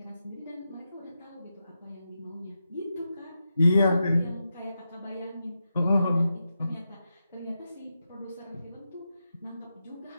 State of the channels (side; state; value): both; inverted; correlation -0.88